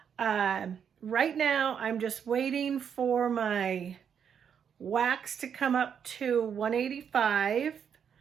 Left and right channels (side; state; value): left; quieter; 7.7 dB